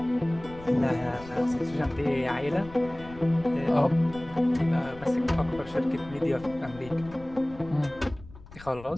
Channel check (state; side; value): noise; left; rumble, 18 dB below the sound